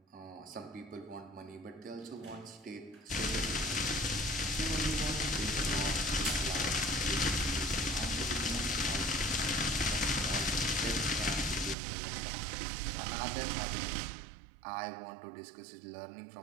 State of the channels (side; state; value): left; drops out; at 11.8 s